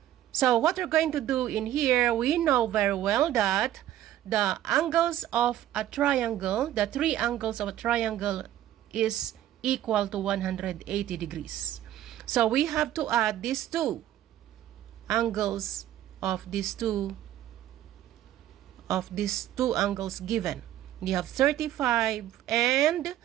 So, what we're going to do in here, we know very well that the angles of a triangle, the 3 angles of a triangle is equal to 180 degrees. So, we have to add these 2 angles of these two angles given. We have 35 and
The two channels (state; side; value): quieter; left; 12.6 dB